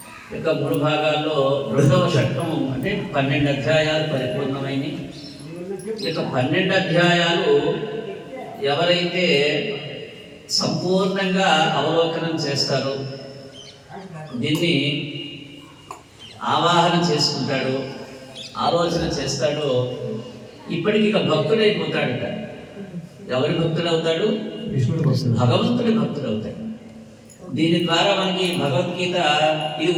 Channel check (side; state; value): both; identical; correlation 1.00